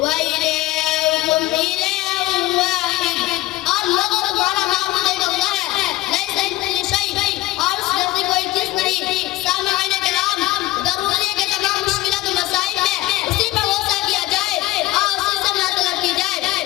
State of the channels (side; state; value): right; quieter; 17.6 dB